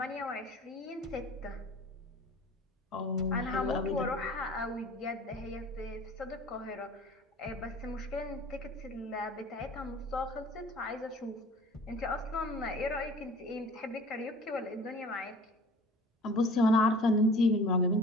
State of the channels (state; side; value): normal; both; correlation 0.46